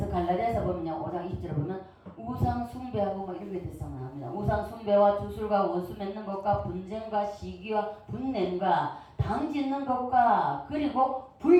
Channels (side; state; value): both; identical; correlation 1.00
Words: 갈라디아서 보면요, 5장 20절에 보면 우상 숭배하고 뭐 이런 게 대상 나옵니다. 우상 숭배와 주술과 원수 맺는 것과 분쟁과 시기와 분냄과 당 짓는 것과 그리고